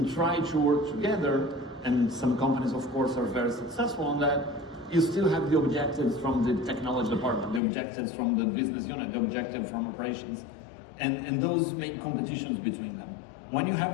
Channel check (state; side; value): drops out; right; at 7.6 s